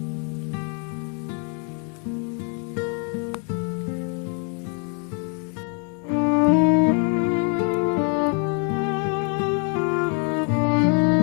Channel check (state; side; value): quieter; right; 39.8 dB